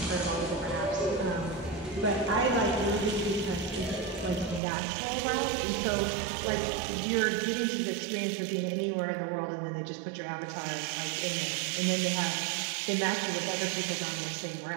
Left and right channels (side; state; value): left; drops out; at 4.6 s